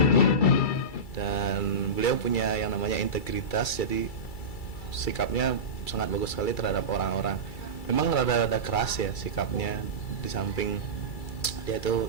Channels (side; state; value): right; late; 2.3 ms